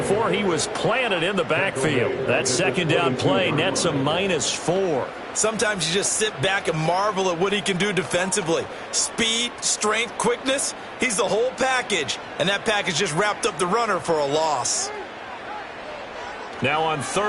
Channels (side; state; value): both; identical; correlation 1.00